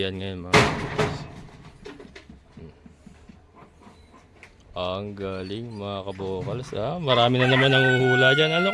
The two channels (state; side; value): identical; both; correlation 1.00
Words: ngayon mga kabukas. Ang galing mga kabokals. Marami na naman nanguhula dyan.